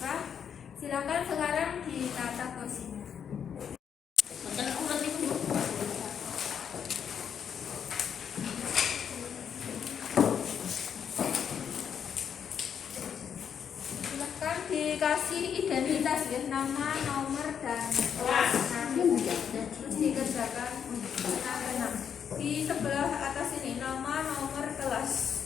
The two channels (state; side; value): quieter; right; 7.9 dB